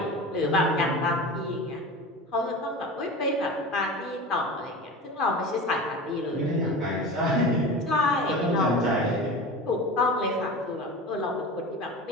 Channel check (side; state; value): both; normal; correlation 0.31